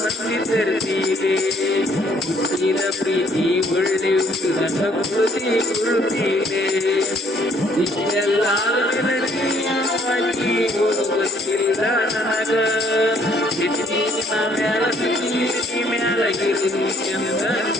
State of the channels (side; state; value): both; normal; correlation 0.63